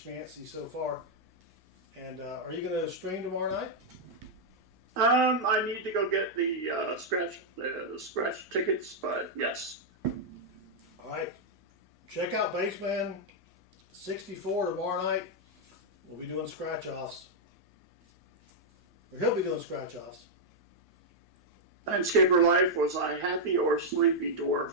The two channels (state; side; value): noise; left; hum, 30 dB below the sound